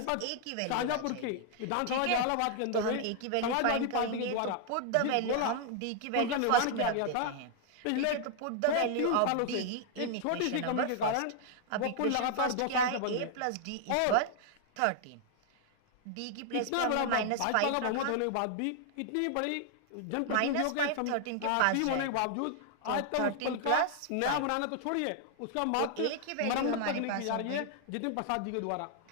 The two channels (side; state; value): both; different; correlation 0.00